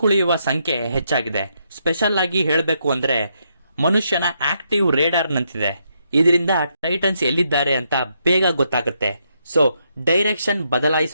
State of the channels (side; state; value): both; inverted; correlation -0.78